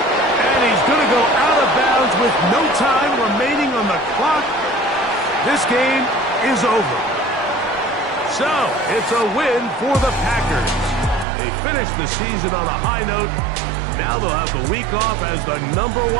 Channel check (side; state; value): left; drops out; at 11.2 s